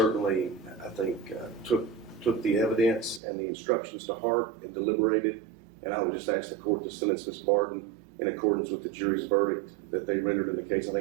I think, took the evidence and the instructions to heart and deliberated. And I would just ask the court to sentence Ms. Barden in accordance with the jury's verdict that they rendered in the case. I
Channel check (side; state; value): left; drops out; at 3.2 s